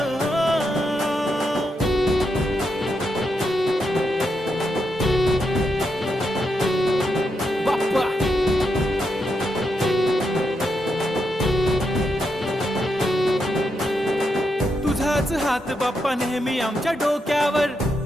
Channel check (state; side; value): normal; both; correlation 0.83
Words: तुझाच हात बाप्पा नेहमी आमच्या डोक्यावर,